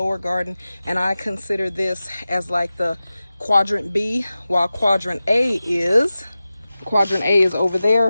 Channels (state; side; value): inverted; both; correlation -0.95